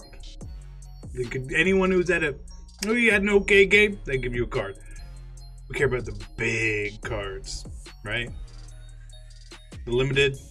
They could, anyone who's at you had an okay game, they give you a card. We care about the big cards, right? The limited,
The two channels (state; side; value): identical; both; correlation 1.00